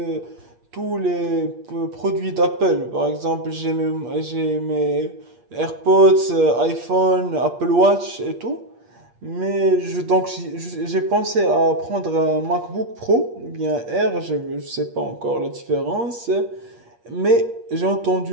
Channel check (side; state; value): left; late; 8.5 ms